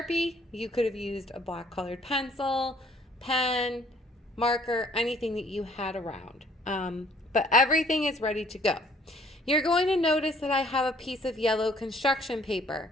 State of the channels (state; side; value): normal; both; correlation 0.60